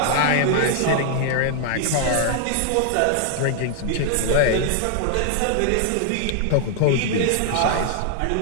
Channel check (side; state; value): both; different; correlation -0.01